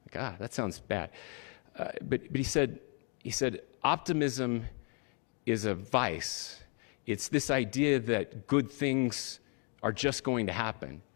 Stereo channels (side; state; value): right; quieter; 38.9 dB